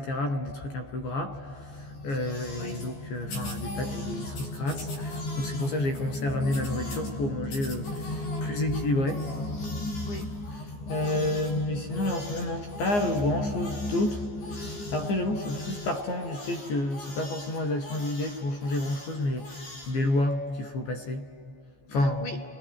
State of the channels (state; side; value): late; right; 15 ms